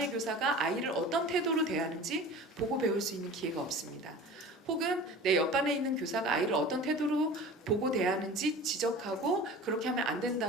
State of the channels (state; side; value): normal; both; correlation 0.39